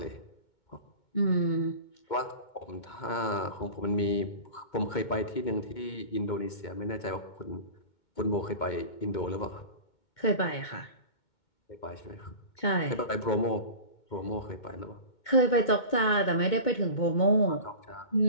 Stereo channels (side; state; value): right; late; 2.2 ms